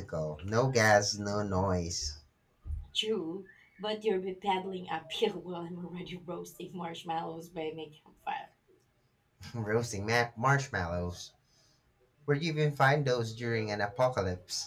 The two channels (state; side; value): identical; both; correlation 1.00